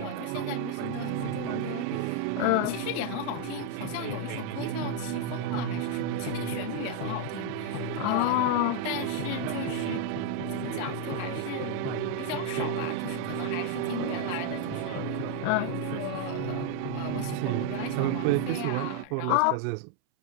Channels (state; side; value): different; both; correlation 0.00